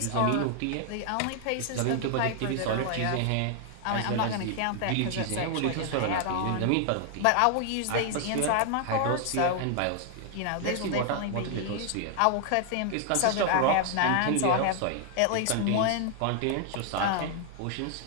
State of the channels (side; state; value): both; different; correlation 0.00